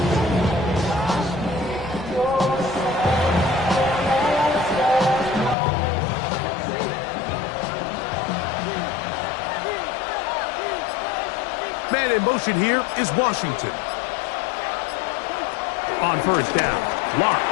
Man in motion here is Washington. On first down,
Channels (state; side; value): drops out; right; at 5.6 s